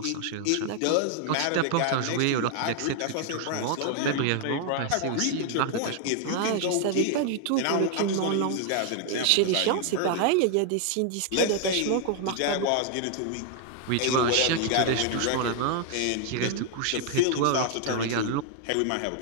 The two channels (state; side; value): different; both; correlation 0.00